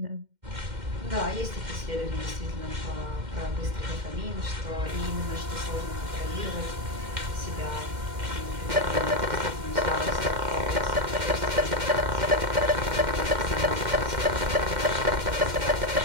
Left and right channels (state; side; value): late; left; 2.1 ms